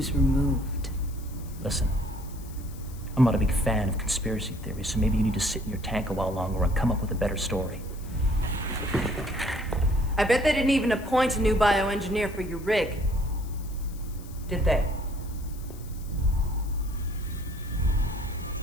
removed. Listen, I'm not a big fan of conspiracy theories, so maybe you need to sit in your tank a while longer and come up with a better story. I bet they didn't even appoint a new bioengineer for your rig. Did they?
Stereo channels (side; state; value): left; noise; hiss, 21 dB below the sound